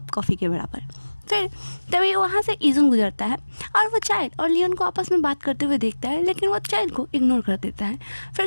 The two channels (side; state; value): both; inverted; correlation -1.00